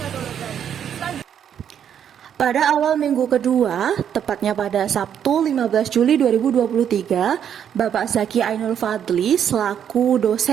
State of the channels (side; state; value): left; quieter; 8.9 dB